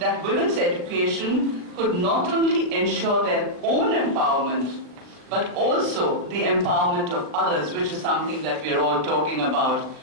women's education could not only ensure their own empowerment, but also the empowerment of others, which is something that we're all talking about.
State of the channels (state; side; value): late; left; 39 ms